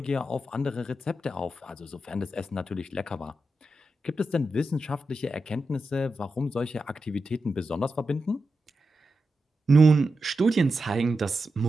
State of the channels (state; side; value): normal; both; correlation 0.89